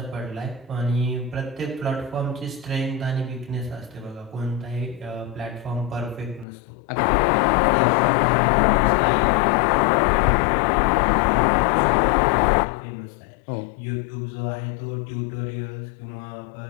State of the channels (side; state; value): right; drops out; at 6.5 s